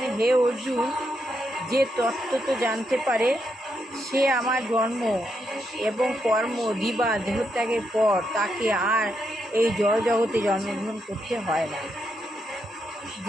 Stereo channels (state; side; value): normal; both; correlation 0.81